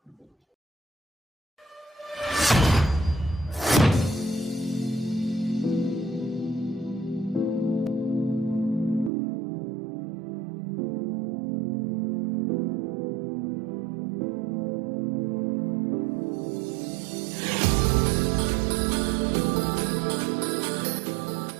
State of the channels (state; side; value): drops out; left; at 9.1 s